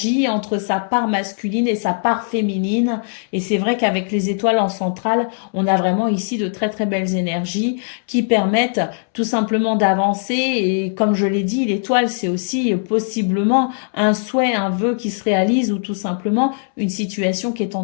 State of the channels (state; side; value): silent; right; 66 dB below the other